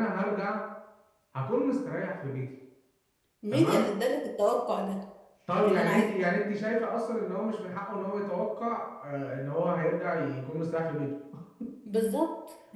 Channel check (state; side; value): identical; both; correlation 1.00